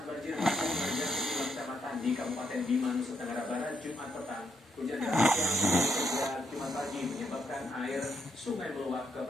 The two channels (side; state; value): both; normal; correlation 0.78